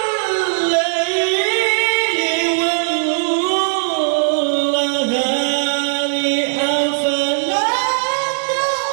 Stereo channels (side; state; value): left; silent; 62 dB below the other